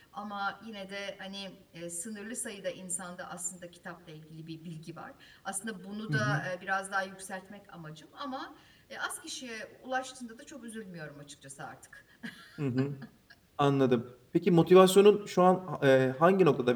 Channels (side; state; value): both; identical; correlation 1.00